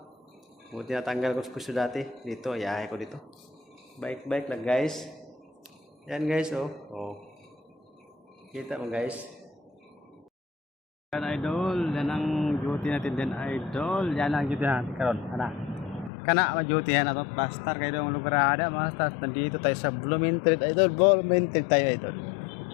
Buti natanggal ko sa puso dati. Dito, yahay ko dito. Bike lang guys. Yan guys oh. Oh. Kita mo guys. Yan idol. Yan ang duty natin din idol. Yan ang duty natin karon. Kana ma-duty yan ato. Basta kayo yung lugar ada. Basta nandito tayo sa Blumentritt idol. Blumentritt tayo idol.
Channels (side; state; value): right; drops out; at 16.1 s